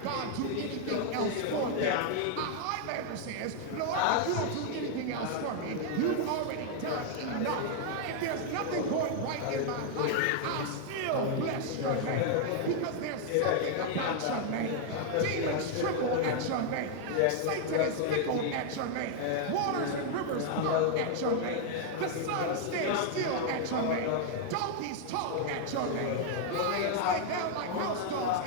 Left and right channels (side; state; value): both; different; correlation 0.00